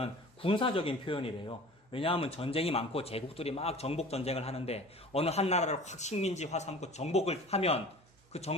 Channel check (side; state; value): both; normal; correlation 0.42